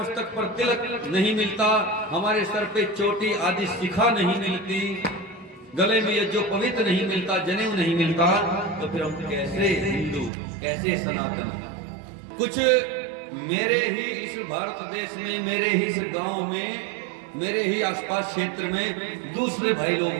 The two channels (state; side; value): drops out; left; at 10.3 s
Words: पर तिलक नहीं मिलता, हमारे सर पे चोटी आदि शिखा नहीं मिलती, गले में ये जो पवित्र नहीं मिलता, जनेऊ नहीं मिलता, तो फिर हम कैसे हिंदू, कैसे सनातनी? कुछ मेरे ही इस भारत देश में, मेरे ही इस गांव में, मेरे ही आसपास क्षेत्र में दूसरे भाई लोग